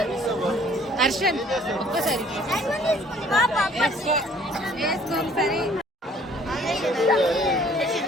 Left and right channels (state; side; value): normal; both; correlation 0.56